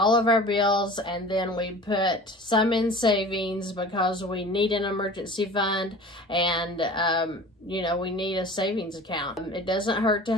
of our bills and then we put some in savings because we need an emergency fund and we need a savings account. It doesn't hurt to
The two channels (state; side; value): normal; both; correlation 0.40